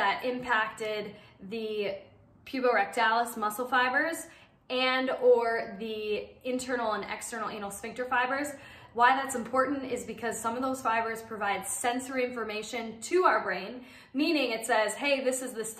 impacted the puborectalis muscle fibers and or the internal and external anal sphincter fibers. Why that's important is because some of those fibers provide sensory information to our brain, meaning it says, hey, this is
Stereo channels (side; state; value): both; identical; correlation 1.00